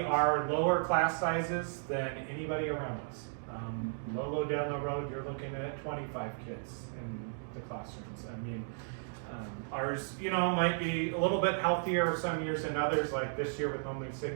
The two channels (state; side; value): silent; left; digital silence